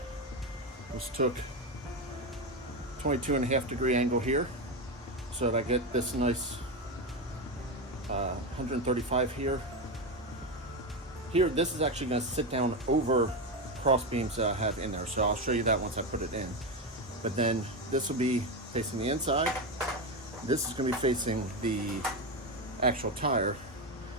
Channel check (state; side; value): normal; both; correlation 0.13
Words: was took 22.5 degree angle here so that I get this nice 135 here. Here, this is actually going to sit down over cross beams that I have in there, so I'll show you that once I put it in. But then this will be facing the inside. This is going to be facing the actual tire,